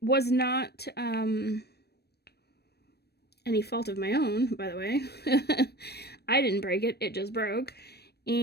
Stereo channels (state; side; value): late; right; 0.47 ms